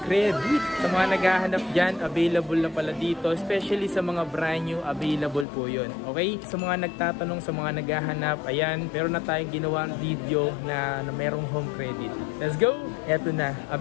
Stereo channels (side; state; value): right; drops out; at 5.5 s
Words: credit. Sa mga naghahanap dyan, available na pala dito. Especially sa mga brand new, available po yun. Okay? Sa mga nagtatanong, sa mga naghahanap, ayan, meron na tayong ginawang video na merong home credit. Let's go! Eto na,